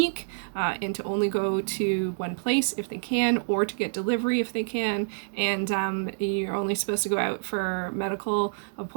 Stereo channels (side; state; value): left; silent; digital silence